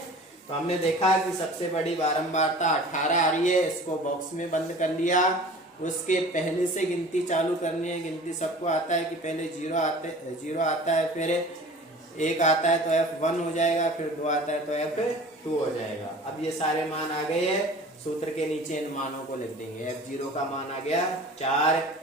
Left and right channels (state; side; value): normal; both; correlation 0.43